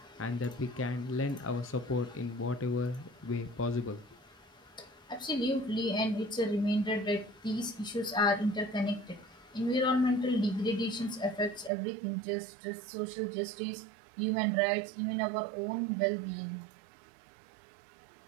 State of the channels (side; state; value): left; drops out; at 11.7 s